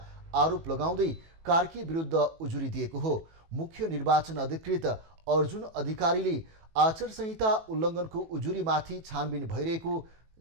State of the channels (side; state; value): left; late; 18 ms